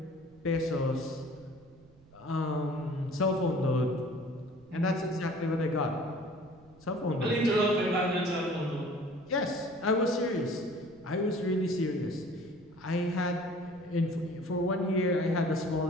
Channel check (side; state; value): right; noise; rumble, 25 dB below the sound